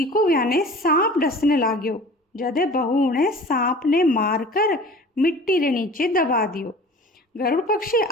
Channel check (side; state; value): both; normal; correlation 0.43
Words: को याने सांप डसने लाग्यो। जदे बहू ने सांप ने मारकर मिट्टी रे नीचे दबा दियो। गरुड़ पक्षी